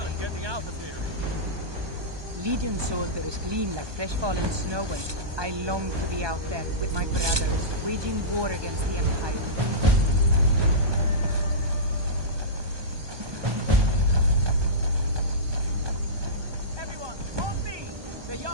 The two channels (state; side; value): late; left; 1.2 ms